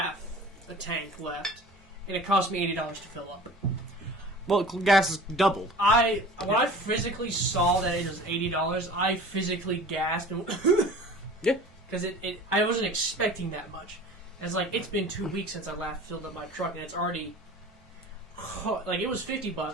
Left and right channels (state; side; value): normal; both; correlation 0.42